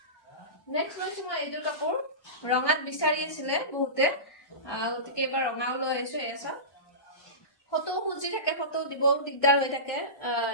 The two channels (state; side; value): late; right; 1.2 ms